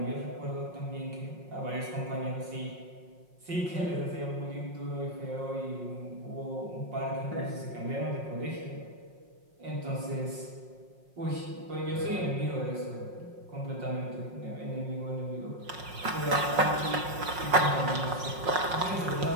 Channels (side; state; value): left; late; 5.5 ms